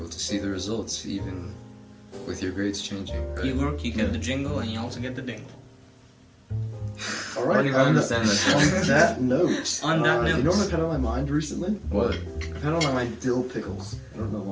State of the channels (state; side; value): identical; both; correlation 1.00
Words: to see the results, even with your grades changing. Right? You work, you get the jingle, and you also get the dingle. All I right. don't even understand that. On that note. On that You know note. what I've had on my mind recently? What? I've had on my mind dill pickles. I don't know